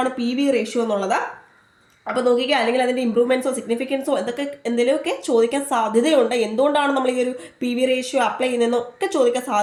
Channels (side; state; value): both; identical; correlation 1.00